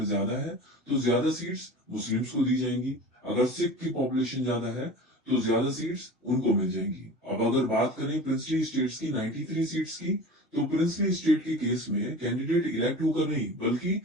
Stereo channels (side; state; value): both; normal; correlation 0.36